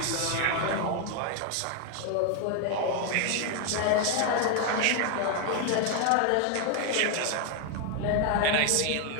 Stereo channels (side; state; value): both; different; correlation 0.01